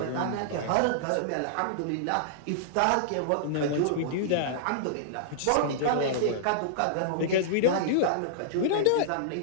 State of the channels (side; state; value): both; different; correlation -0.02